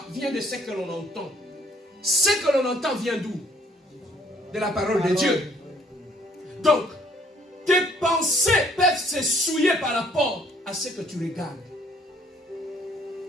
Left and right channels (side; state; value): both; normal; correlation 0.62